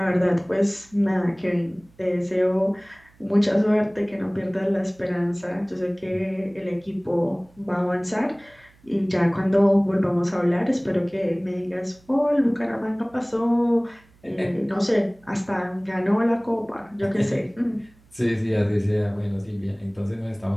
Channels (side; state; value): right; noise; hum, 30 dB below the sound